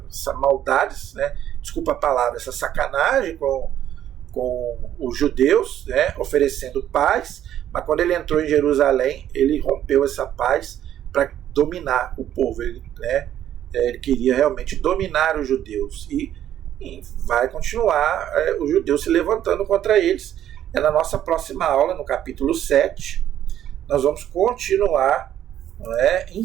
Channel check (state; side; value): quieter; left; 11.2 dB